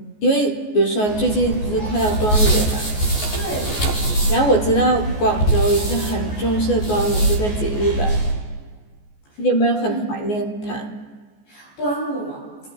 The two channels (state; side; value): late; right; 14 ms